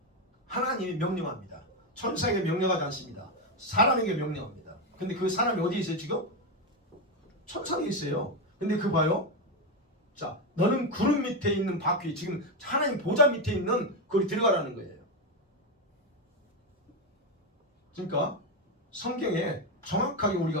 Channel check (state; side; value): normal; both; correlation 0.09